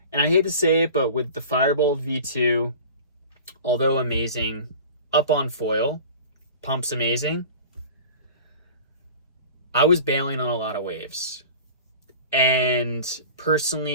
And I hate to say it, but with the Firebolt V2, although amazing, up on foil, pumps amazing, I was bailing on a lot of waves. And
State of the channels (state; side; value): inverted; both; correlation -0.39